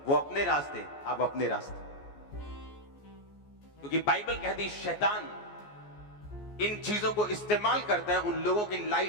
वो अपने रास्ते, आप अपने रास्ते। क्योंकि बाइबल कहती है शैतान इन चीजों को इस्तेमाल करता है उन लोगों की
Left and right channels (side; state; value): right; late; 14 ms